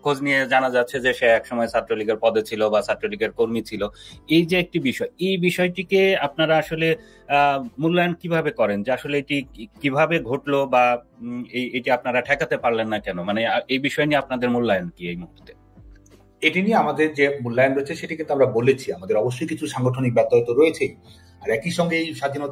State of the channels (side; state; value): both; identical; correlation 1.00